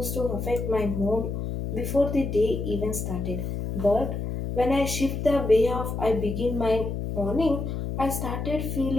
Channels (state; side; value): noise; left; hum, 4 dB below the sound